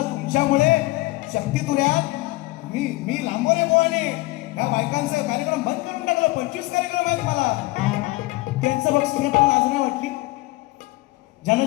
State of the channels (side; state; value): right; quieter; 20.6 dB